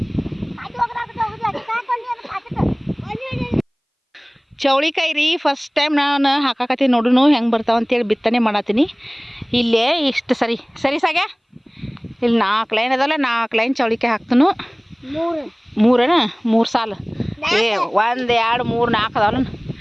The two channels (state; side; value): identical; both; correlation 1.00